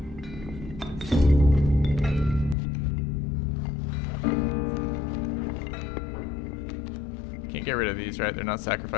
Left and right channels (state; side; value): drops out; right; at 2.6 s